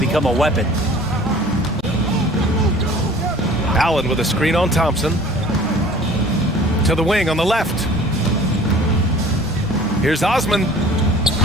a weapon. Allen with a screen on Thompson. To the wing on the left. Here's Osman.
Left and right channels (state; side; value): normal; both; correlation 0.48